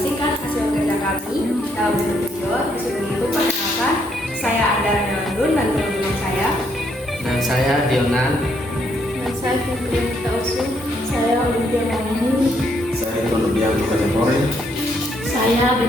hasil kerja kami dalam bentuk video. Disuruh itu perkenalkan, saya Andara Nelandun dan teman-teman saya. Dan saya Dionan. Dan saya Fitri Tausu. Saya Olimpia Mauni. Saya Ikonobian Kategori. Saya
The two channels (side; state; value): both; normal; correlation 0.72